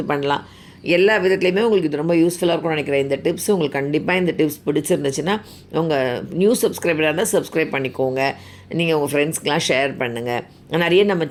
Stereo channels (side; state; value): both; identical; correlation 1.00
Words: பண்ணலாம். எல்லா விதத்துலையுமே உங்களுக்கு இது ரொம்ப யூஸ்ஃபுல்லாக இருக்கும்னு நினைக்கிறேன். இந்த டிப்ஸ் உங்களுக்கு கண்டிப்பாக இந்த டிப்ஸ் பிடிச்சிருந்துச்சுன்னா உங்கள் நியூ சப்ஸ்கிரைபராக இருந்தால் சப்ஸ்கிரைப் பண்ணிக்கோங்க. நீங்கள் உங்கள் ஃப்ரெண்ட்ஸ்க்கெலாம் ஷேர் பண்ணுங்கள். நிறைய நம்ம